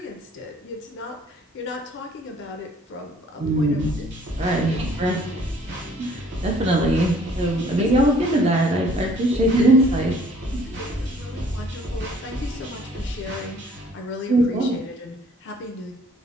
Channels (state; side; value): normal; both; correlation 0.57